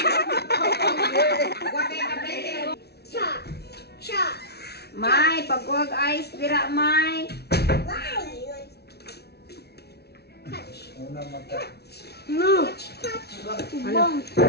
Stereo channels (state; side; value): late; right; 0.47 ms